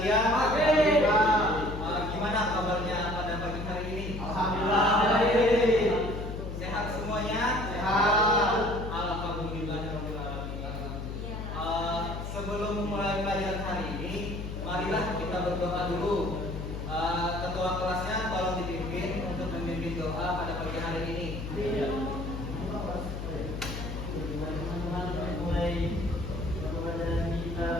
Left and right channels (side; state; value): left; noise; hum, 6 dB below the sound